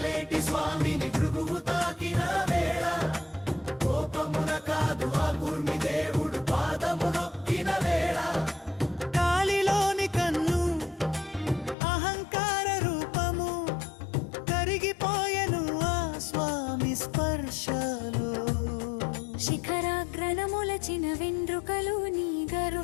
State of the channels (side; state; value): right; drops out; at 11.8 s